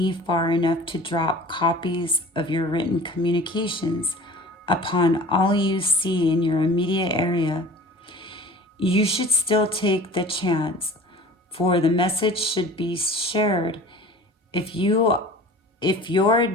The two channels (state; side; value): normal; both; correlation 0.44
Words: far enough to drop copies of your written communications upon all you see in your immediate area, you should still take the chance, for the message should be shared. If your